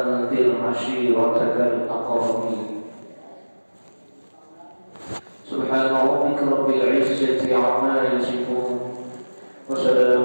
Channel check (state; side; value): inverted; both; correlation -1.00